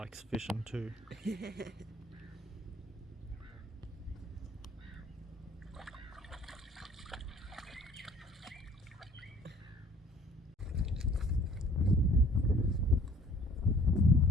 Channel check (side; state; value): both; normal; correlation 0.55